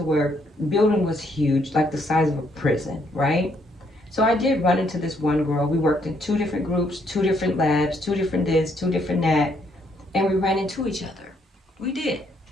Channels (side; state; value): both; normal; correlation 0.71